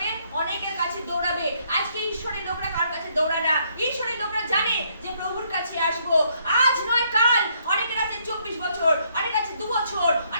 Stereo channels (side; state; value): both; inverted; correlation -0.71